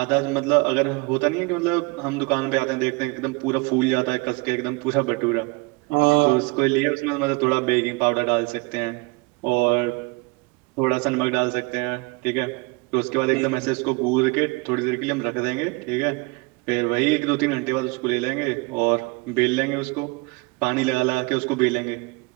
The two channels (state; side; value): quieter; left; 27.2 dB